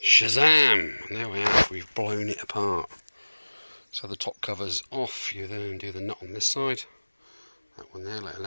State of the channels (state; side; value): inverted; both; correlation -1.00